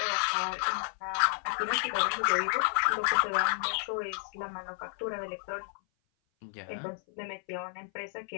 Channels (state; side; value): silent; right; 56 dB below the other